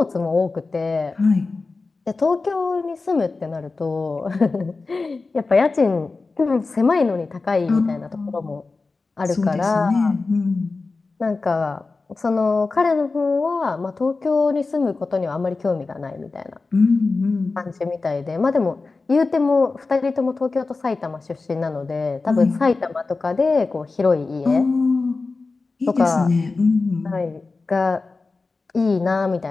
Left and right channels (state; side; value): quieter; right; 3.9 dB